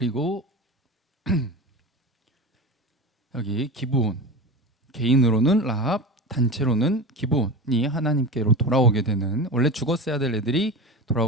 여기 기브온, 개인으로는 라합, 단체로는 기브온이 하나님께로 돌아오게 되는, 원래 죽었어야 될 애들이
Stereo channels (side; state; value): both; normal; correlation 0.27